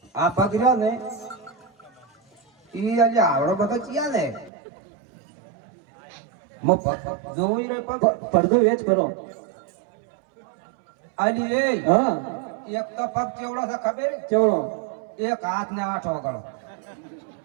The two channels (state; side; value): drops out; left; at 4.5 s